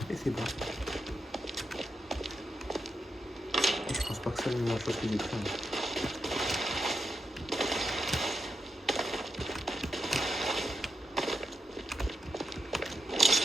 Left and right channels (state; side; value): normal; both; correlation 0.86